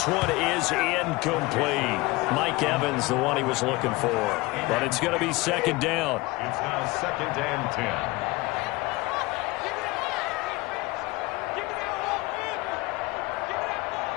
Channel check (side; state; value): right; quieter; 22.2 dB